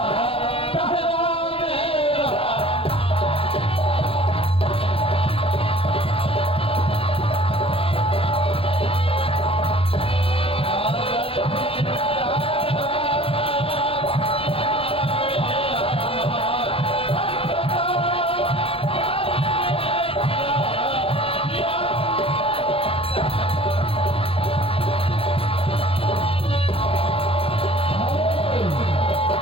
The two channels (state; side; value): late; right; 0.27 ms